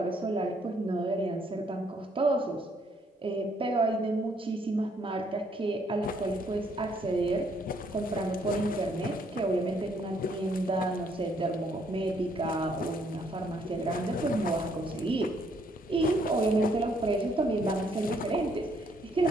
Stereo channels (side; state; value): both; normal; correlation 0.68